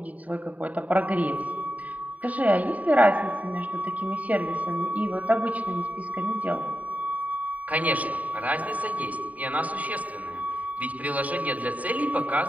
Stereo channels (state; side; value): late; left; 0.072 ms